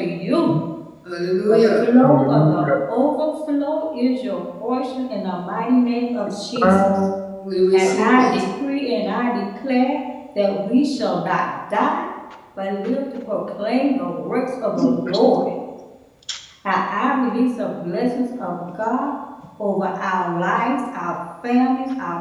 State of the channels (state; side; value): identical; both; correlation 1.00